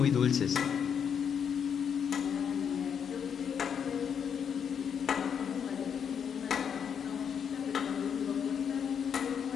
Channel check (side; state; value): right; quieter; 7.5 dB